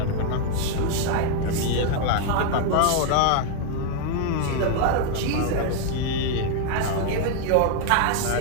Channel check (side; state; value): both; different; correlation 0.00